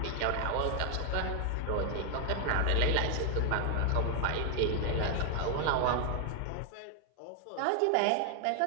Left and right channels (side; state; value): both; different; correlation 0.00